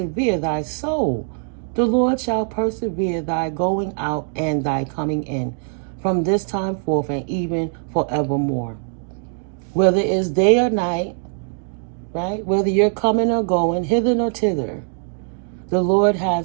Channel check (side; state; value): left; silent; 61 dB below the other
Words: thy soul. The Lord shall persevere thy going out and thy coming in, from this time forth and even forevermore. Whether it's day or night, right? Whether you're coming or going, hither or thither, the Lord